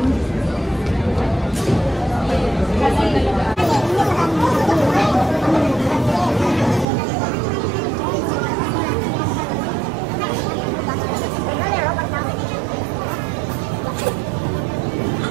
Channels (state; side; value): drops out; left; at 6.9 s